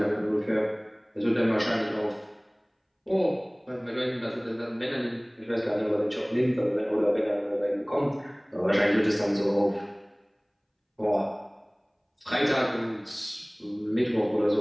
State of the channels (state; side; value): identical; both; correlation 1.00